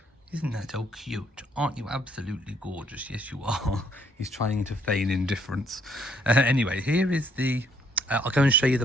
Isn't that so cute? Aren't you absolutely gorgeous? Yes, you are. He's trying to feign indifference. Anyway, here is the... I'll go and show you the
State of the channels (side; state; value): both; normal; correlation 0.67